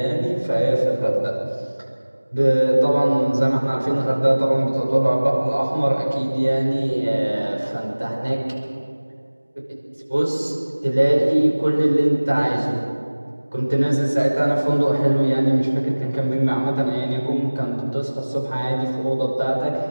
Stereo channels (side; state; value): both; inverted; correlation -1.00